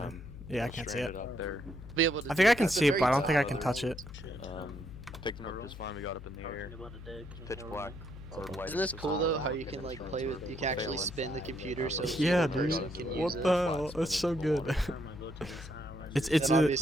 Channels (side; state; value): left; noise; hum, 14 dB below the sound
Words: Yeah, I can't see it. Out there. Be able to. I think I can that's a see it, very but I don't top think I can level. touch it. Picked him up just fine. We got up in the air. Pitch black. Or light Isn't this up cool the though? sun. How you can like play with? You can actually spin the computer so Yeah, the person dude. can What use the it. hell? That's so good. It's Then